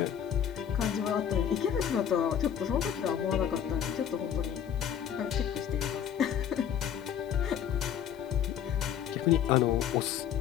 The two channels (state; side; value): quieter; right; 9.0 dB